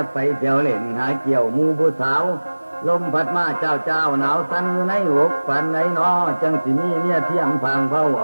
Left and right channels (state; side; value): inverted; both; correlation -1.00